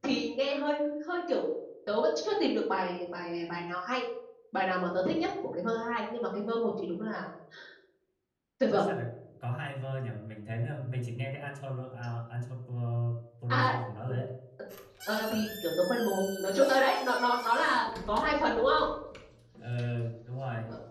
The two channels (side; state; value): both; identical; correlation 1.00